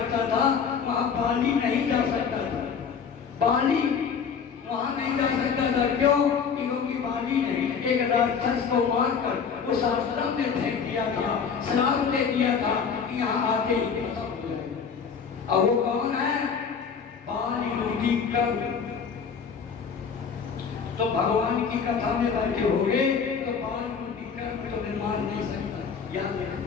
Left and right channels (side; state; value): right; quieter; 6.4 dB